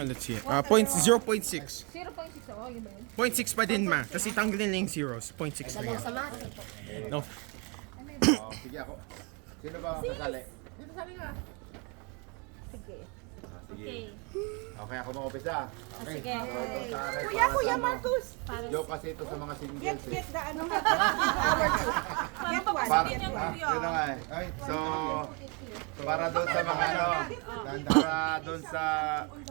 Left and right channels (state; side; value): quieter; left; 32.7 dB